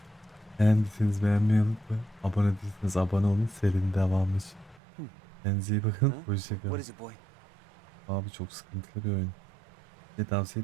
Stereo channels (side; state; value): left; drops out; at 4.8 s